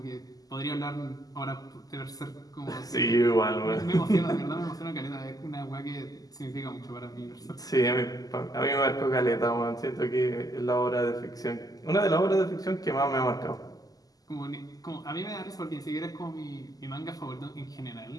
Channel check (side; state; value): right; late; 0.17 ms